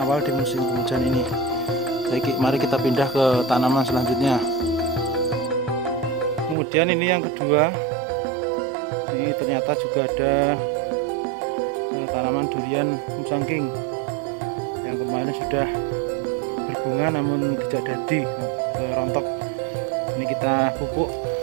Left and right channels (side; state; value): left; drops out; at 6.6 s